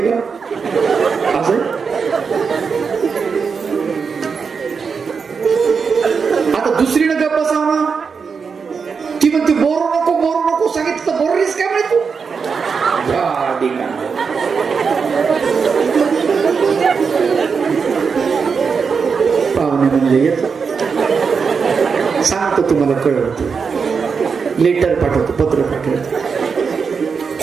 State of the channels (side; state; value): left; quieter; 5.6 dB